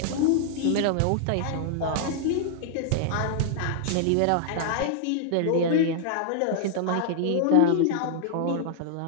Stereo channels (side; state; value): both; different; correlation -0.01